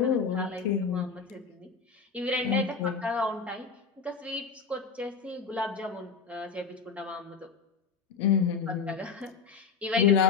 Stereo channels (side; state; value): right; quieter; 5.5 dB